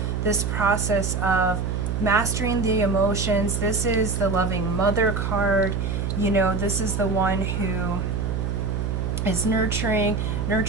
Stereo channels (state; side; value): noise; right; hum, 1 dB below the sound